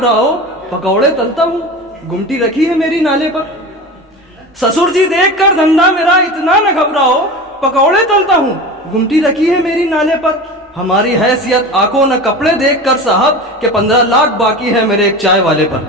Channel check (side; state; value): both; normal; correlation 0.30